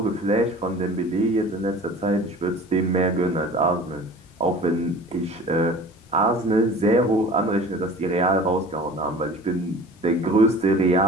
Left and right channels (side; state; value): both; normal; correlation 0.42